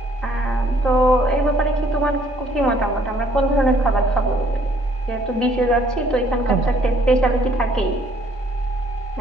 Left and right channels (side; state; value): both; normal; correlation 0.63